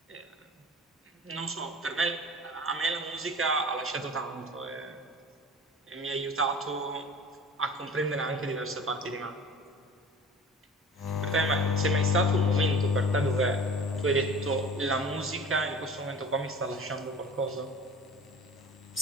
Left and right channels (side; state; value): both; normal; correlation 0.41